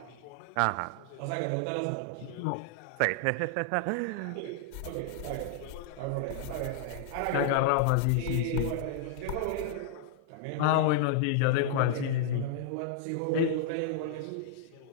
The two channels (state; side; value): different; both; correlation -0.01